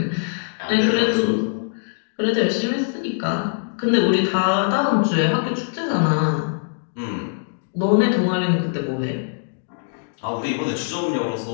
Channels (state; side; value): silent; right; digital silence